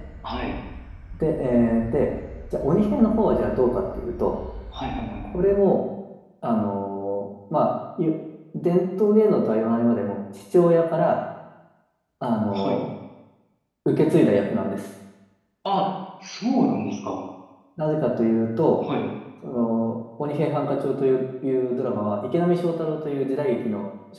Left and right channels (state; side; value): identical; both; correlation 1.00